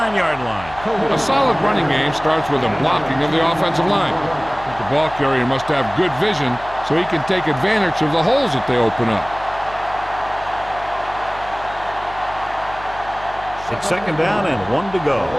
line. A solid running game starts with a blocking of the offensive line. The ball carrier must have good vision so he can take advantage of the holes that they open up. It's second down and 1 to go. On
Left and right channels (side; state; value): left; noise; hum, 18 dB below the sound